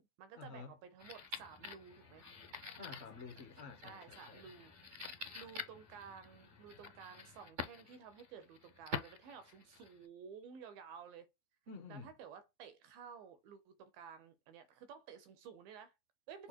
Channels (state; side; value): late; left; 12 ms